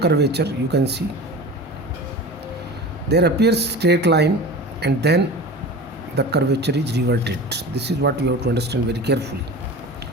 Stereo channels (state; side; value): normal; both; correlation 0.34